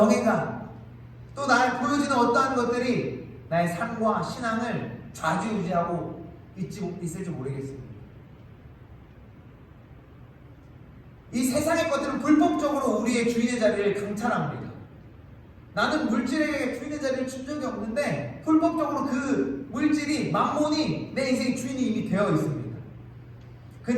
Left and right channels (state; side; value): identical; both; correlation 1.00